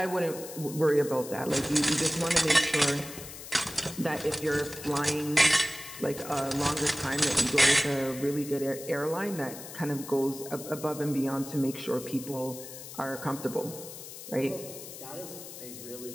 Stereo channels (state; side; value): noise; left; hiss, 12 dB below the sound